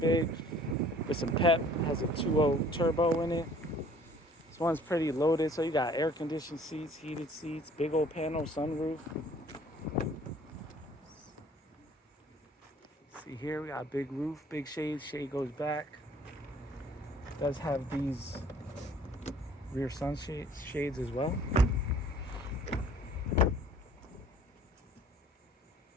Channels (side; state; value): both; normal; correlation 0.54